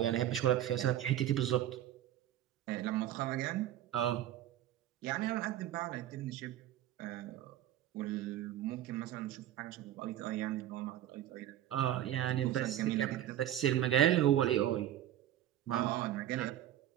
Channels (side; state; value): left; quieter; 12.2 dB